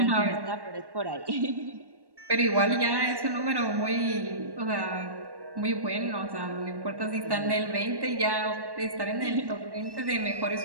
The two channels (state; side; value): late; left; 1.1 ms